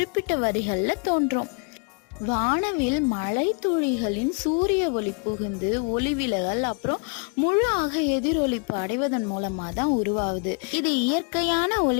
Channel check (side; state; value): right; quieter; 38.2 dB